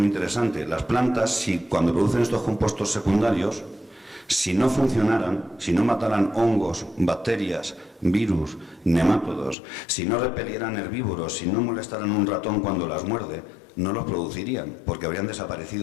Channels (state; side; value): drops out; right; at 9.6 s